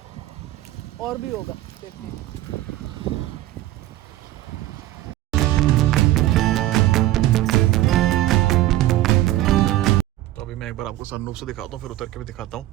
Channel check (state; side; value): quieter; left; 15.3 dB